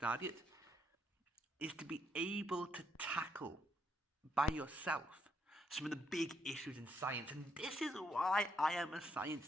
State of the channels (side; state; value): both; normal; correlation 0.74